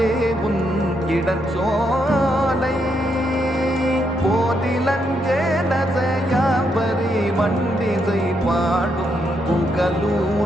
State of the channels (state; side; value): normal; both; correlation 0.78